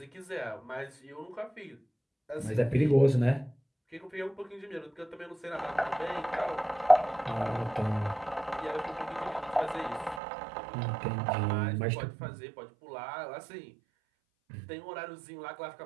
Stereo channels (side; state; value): left; drops out; at 10.2 s